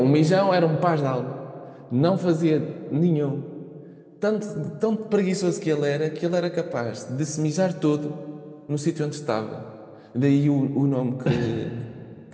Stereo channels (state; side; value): identical; both; correlation 1.00